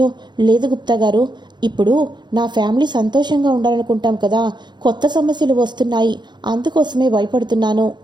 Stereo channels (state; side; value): late; left; 0.21 ms